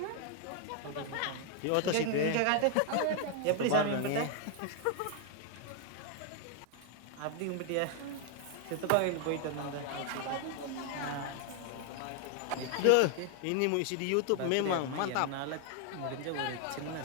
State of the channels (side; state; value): both; different; correlation 0.00